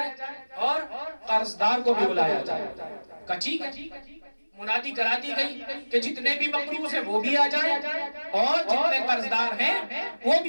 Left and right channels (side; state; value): both; inverted; correlation -1.00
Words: اور قرضدار کو بھی بلایا جائے۔ کہا ٹھیک ہے، منادی کرا دی گئی کہ جتنے بھی مقروض ہیں وہ بھی آ جائیں اور جتنے قرضدار ہیں وہ